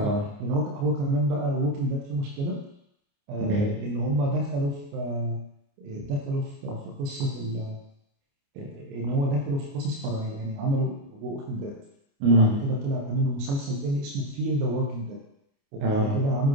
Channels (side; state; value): left; late; 29 ms